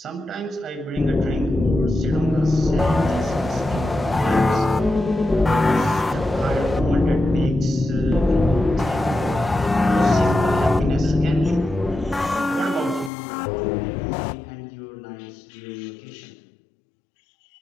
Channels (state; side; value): drops out; right; at 13.1 s